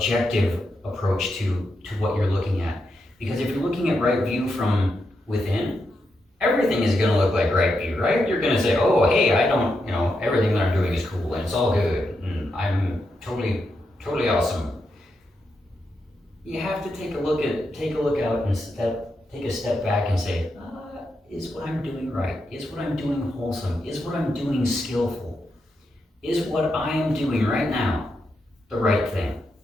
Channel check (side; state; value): both; normal; correlation 0.84